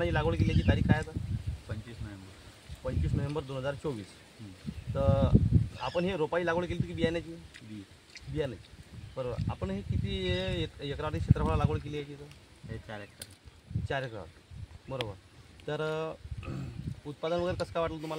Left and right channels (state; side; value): identical; both; correlation 1.00